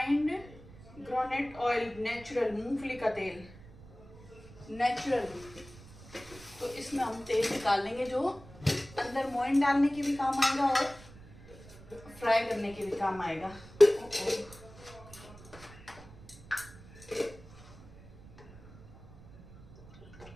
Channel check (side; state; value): right; noise; rumble, 20 dB below the sound